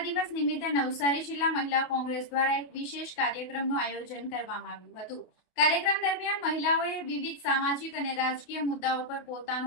દિવસ નિમિત્તે નવસારી જિલ્લા મહિલા કોંગ્રેસ દ્વારા એક વિશેષ કાર્યક્રમનું આયોજન કરવામાં આવ્યું હતું। કાર્યક્રમ દરમિયાન મહિલાઓએ વિવિધ સામાજિક અને રાજકીય મુદ્દાઓ પર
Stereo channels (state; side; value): late; right; 28 ms